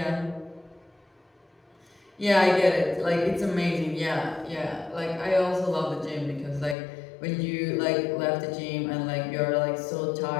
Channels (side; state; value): right; drops out; at 6.8 s